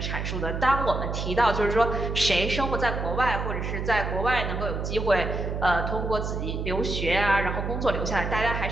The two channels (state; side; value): noise; right; hum, 3 dB below the sound